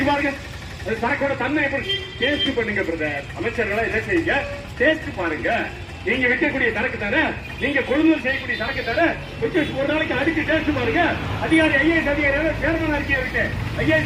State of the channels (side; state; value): both; identical; correlation 1.00